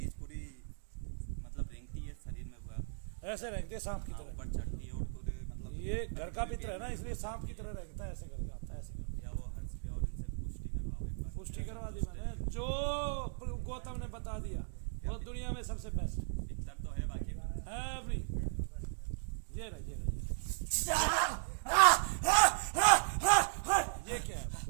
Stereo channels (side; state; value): left; silent; digital silence